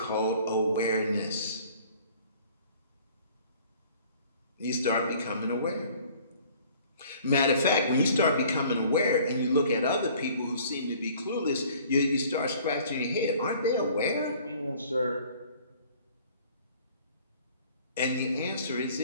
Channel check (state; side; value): inverted; both; correlation -0.53